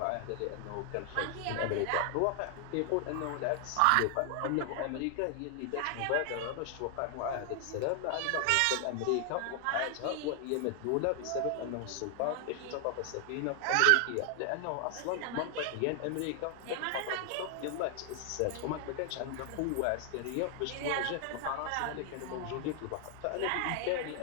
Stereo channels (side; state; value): both; different; correlation 0.00